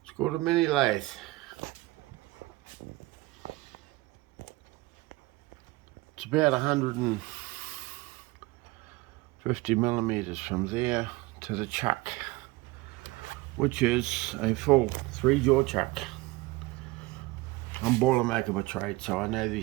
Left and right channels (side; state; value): left; quieter; 21.0 dB